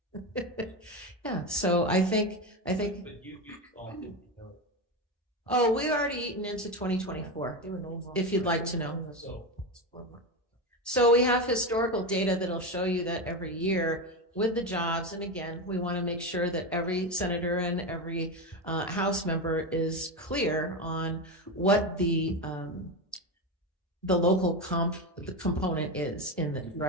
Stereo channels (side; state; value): both; normal; correlation 0.16